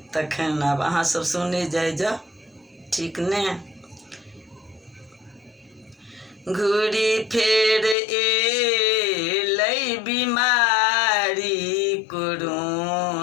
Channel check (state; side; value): drops out; right; at 8.0 s